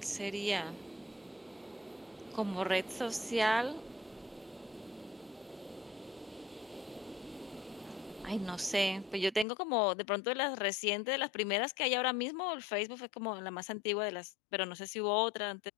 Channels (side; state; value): right; drops out; at 9.5 s